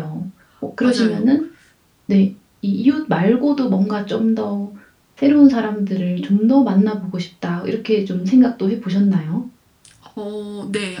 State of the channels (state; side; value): identical; both; correlation 1.00